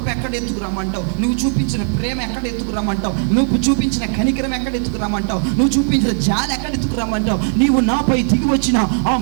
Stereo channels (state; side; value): silent; left; 60 dB below the other